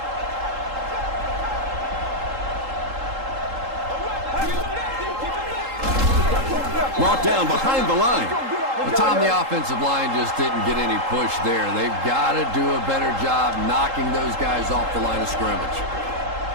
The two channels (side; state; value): left; late; 3.8 ms